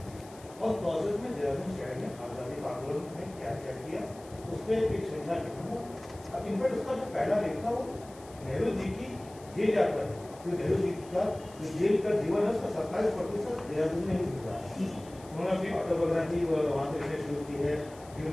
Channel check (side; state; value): left; noise; hiss, 22 dB below the sound